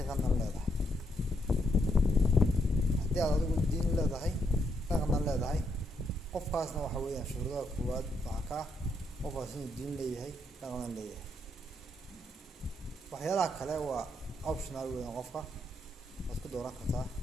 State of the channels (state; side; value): normal; both; correlation 0.77